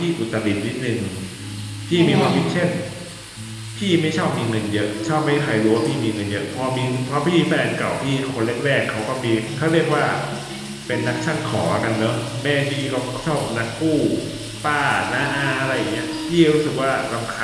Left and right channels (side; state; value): both; identical; correlation 1.00